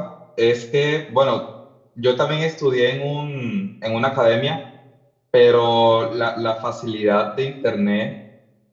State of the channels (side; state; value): both; identical; correlation 1.00